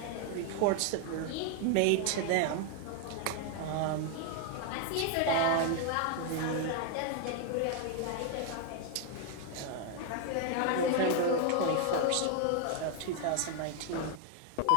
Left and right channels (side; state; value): both; different; correlation 0.00